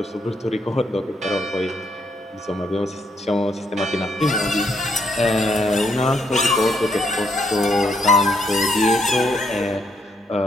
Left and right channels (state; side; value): normal; both; correlation 0.74